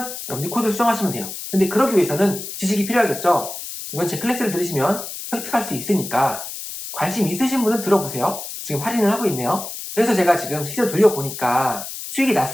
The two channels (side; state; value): left; noise; hiss, 9 dB below the sound